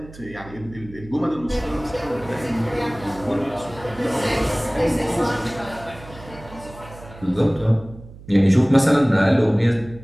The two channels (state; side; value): noise; right; hum, 18 dB below the sound